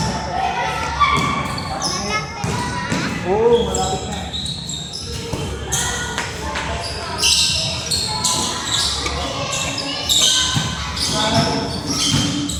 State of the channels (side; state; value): both; identical; correlation 1.00